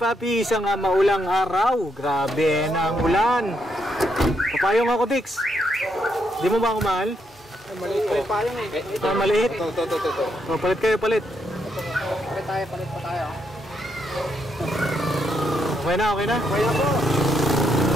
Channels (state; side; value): normal; both; correlation 0.78